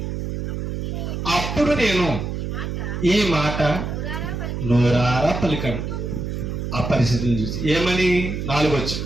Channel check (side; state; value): right; noise; hum, 4 dB below the sound